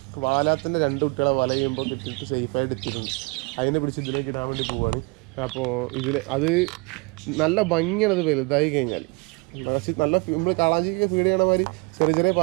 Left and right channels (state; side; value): quieter; left; 30.1 dB